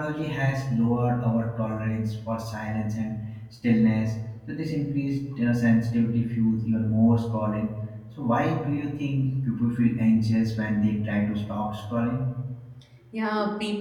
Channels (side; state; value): both; identical; correlation 1.00